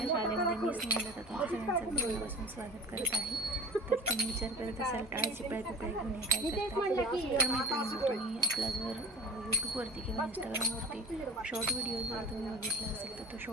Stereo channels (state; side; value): normal; both; correlation 0.38